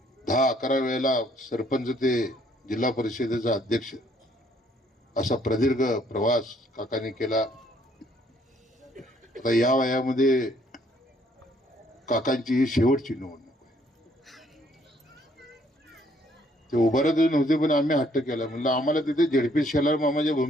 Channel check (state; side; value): normal; both; correlation 0.65